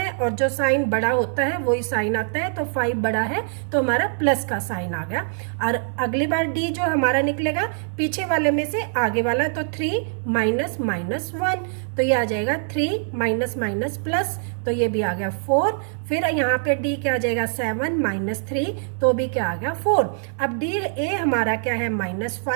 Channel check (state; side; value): silent; left; 63 dB below the other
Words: और जो साइन बड़ा होता है वही साइन आता है, तो 5 बड़ा है तो हमारा प्लस का साइन आ गया। और अगली बार D जो हमारा निकलेगा पीछे वाले में से आगे वाला, तो 3 -1, तो ये आ जाएगा 3 माइनस माइनस प्लस, तो ये भी आ गया 4। फिर यहाँ पे D क्या आ जाएगा 7 -3, तो भी क्या आ गया 4। अब A हमारा क्या है